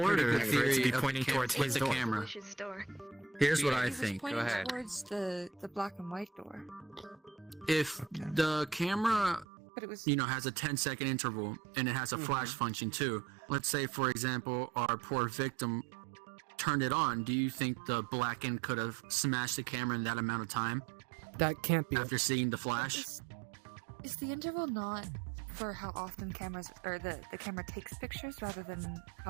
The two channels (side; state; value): left; drops out; at 9.5 s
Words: ordered good for it to theory be of pointing towards with his the door. camera. Wish's door. Here's what I It was think. pointing Go ahead. towards the black and white door. If the camera, But it was. has a 10-second interval and it has a flash function too. Let's say, for example, our poor victim turned it on. Do you think the blackened could have smashed the camera in that amount of time That can't be. after seeing the flash? Is the interval not for how often cameras or the camera takes pictures rather than